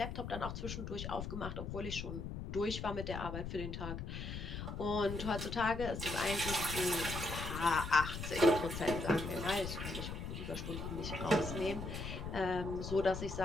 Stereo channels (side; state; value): left; noise; rumble, 6 dB below the sound